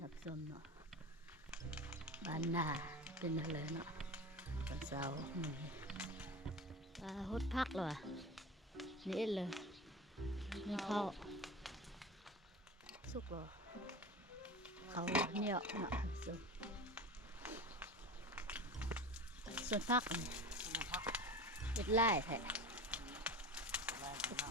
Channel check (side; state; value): both; normal; correlation 0.31